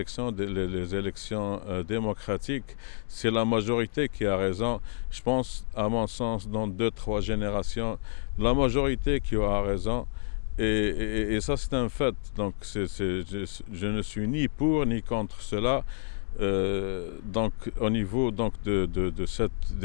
les élections démocratiques, c'est la majorité qui a raison. Je pense, à mon sens, dans 2-3 générations, la majorité qui aura raison. Et ça, c'est un fait. Donc, je ne suis ni pour ni contre cela. Donc, au niveau donc, de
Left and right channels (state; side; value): silent; right; digital silence